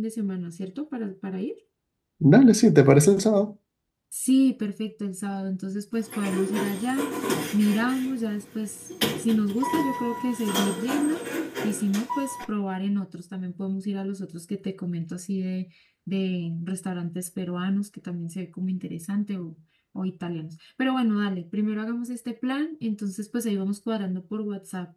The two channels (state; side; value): identical; both; correlation 1.00